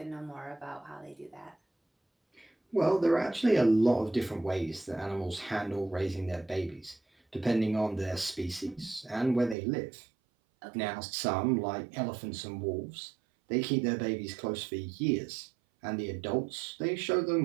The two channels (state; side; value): drops out; left; at 9.6 s